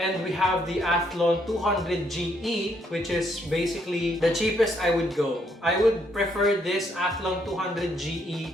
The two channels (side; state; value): both; normal; correlation 0.72